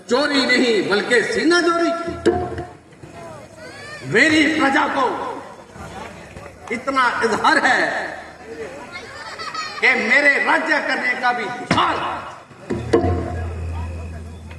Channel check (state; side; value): identical; both; correlation 1.00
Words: चोरी नहीं बल्कि सीना चोरी। मेरी प्रजा को इतना इजहार है कि मेरे राज्य करने का भी हाल।